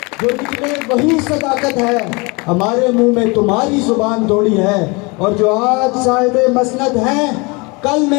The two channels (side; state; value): right; quieter; 27.9 dB